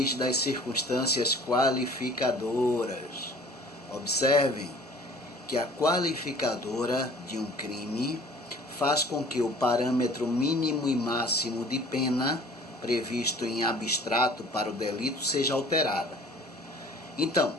das circunstâncias qualificadoras. Observem que a qualificadora de um crime faz com que o parâmetro mínimo e máximo de pena previsto em abstrato para o delito seja alterada. Então,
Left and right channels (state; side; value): normal; both; correlation 0.49